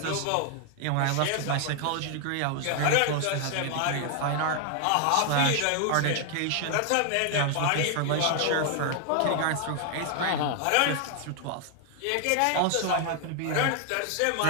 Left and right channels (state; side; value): different; both; correlation 0.00